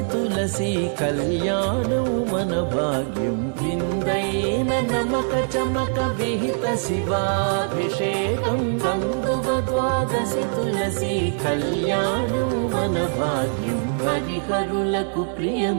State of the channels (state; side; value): silent; left; 63 dB below the other